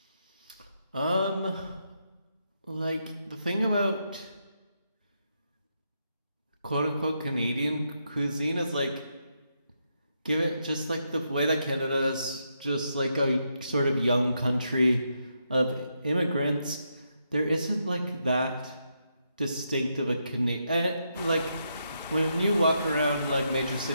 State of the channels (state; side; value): inverted; both; correlation -0.81